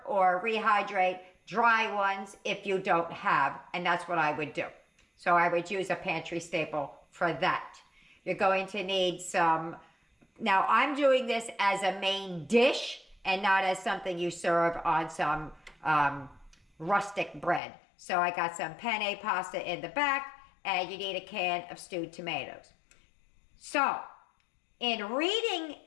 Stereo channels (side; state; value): right; drops out; at 17.6 s